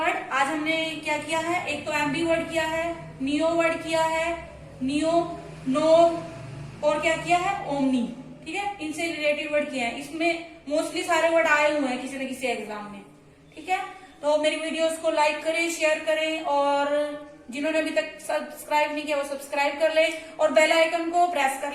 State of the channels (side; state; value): both; identical; correlation 1.00